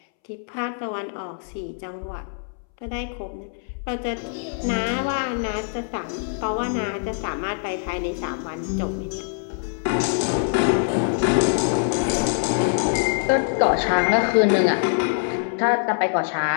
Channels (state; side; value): silent; right; 63 dB below the other